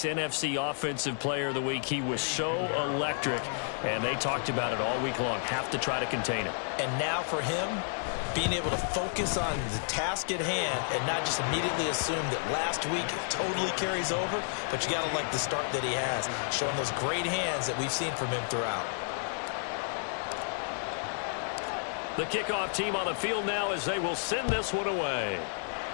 NFC Offensive Player of the Week. He was so electric, and they talked about it all week long. Have to try to contain him. And now for him, being able to focus on the task at hand and not just immediately assume that last week it totally carries over, but you got to like the start that he has, showing those great hands that we've seen from him throughout. The kickoff team on the field now as they will send this one away.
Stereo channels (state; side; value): silent; right; 57 dB below the other